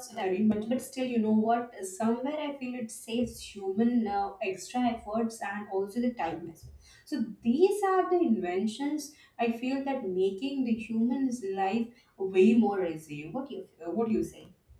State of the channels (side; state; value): both; identical; correlation 1.00